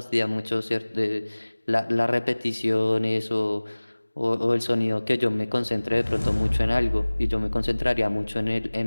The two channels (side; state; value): both; inverted; correlation -1.00